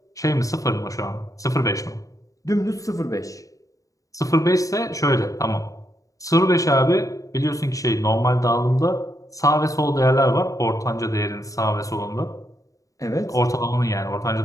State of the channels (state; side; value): late; right; 0.16 ms